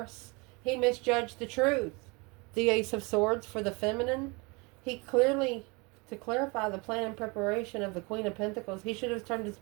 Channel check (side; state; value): left; quieter; 28.1 dB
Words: He misjudged the truth. The Ace of Swords for the feminine. He clearly, to clarify the plan and preparation of the Queen of Pentacles, he should have turned his